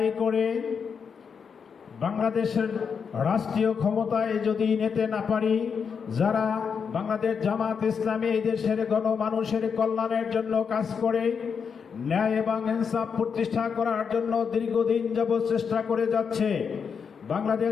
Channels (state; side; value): quieter; right; 6.3 dB